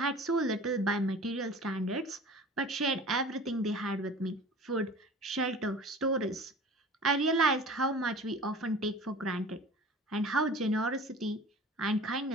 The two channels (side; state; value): both; normal; correlation 0.41